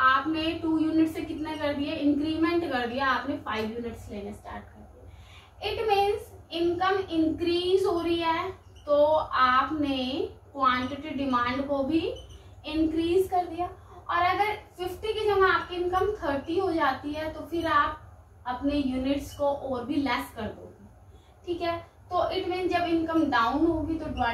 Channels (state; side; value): identical; both; correlation 1.00